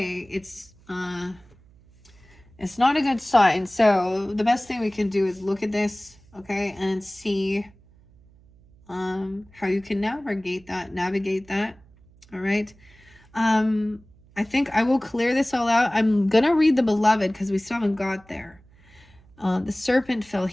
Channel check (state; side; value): noise; right; hum, 27 dB below the sound